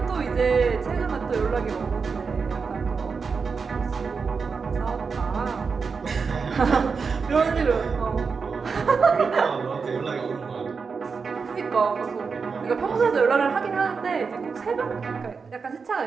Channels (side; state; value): left; quieter; 5.2 dB